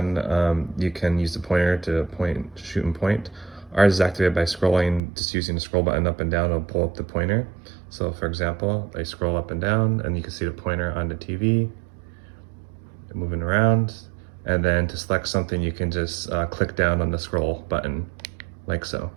you can use the pointer to point, shoot and point. Ours is activated by scrolling, just using the scroll button up and down, it'll pull up the pointer. So for example, I scroll up and down and you can see the pointer on the TV, moving around. And then to select something, you can just click down on the scroll button, like so.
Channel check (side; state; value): left; drops out; at 5.0 s